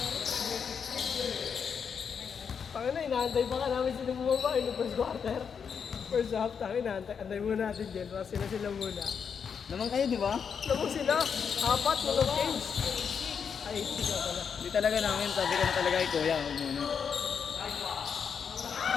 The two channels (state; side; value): quieter; right; 6.7 dB